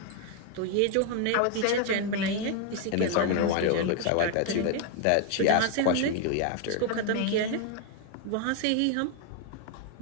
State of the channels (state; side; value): different; both; correlation 0.00